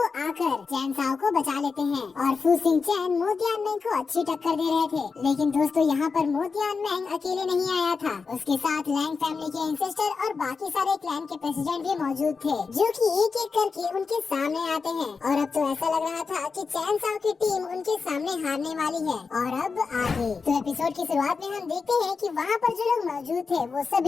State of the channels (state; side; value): quieter; right; 4.9 dB